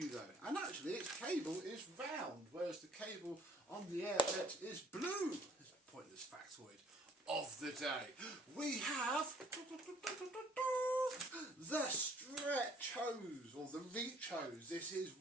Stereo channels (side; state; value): both; normal; correlation 0.59